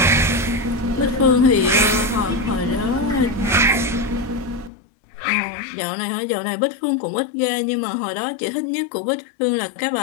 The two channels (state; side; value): drops out; right; at 4.7 s